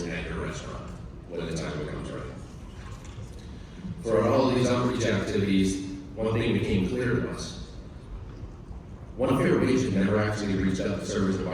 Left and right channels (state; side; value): identical; both; correlation 1.00